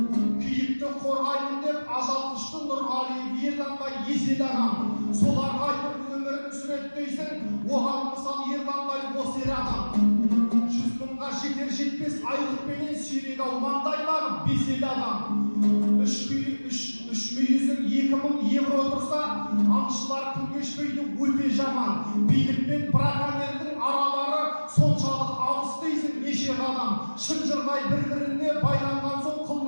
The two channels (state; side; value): inverted; both; correlation -1.00